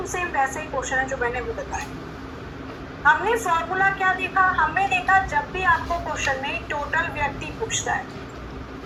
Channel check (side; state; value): both; identical; correlation 1.00